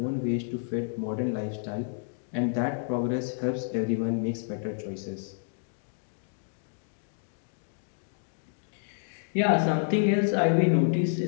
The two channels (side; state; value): right; silent; digital silence